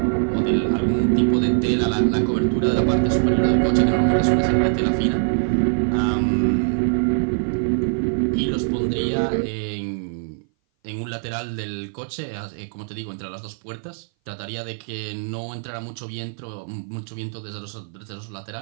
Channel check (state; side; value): silent; left; 58 dB below the other